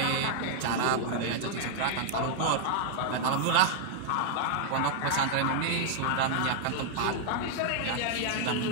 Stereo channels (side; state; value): both; different; correlation -0.01